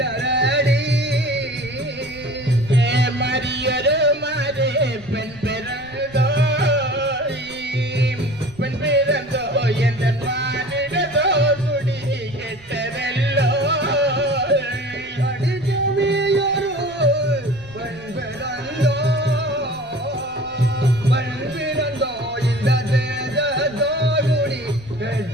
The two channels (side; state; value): right; noise; rumble, 24 dB below the sound